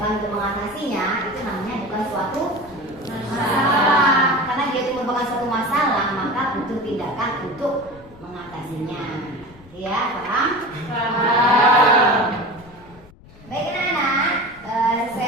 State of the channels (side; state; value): left; noise; rumble, 23 dB below the sound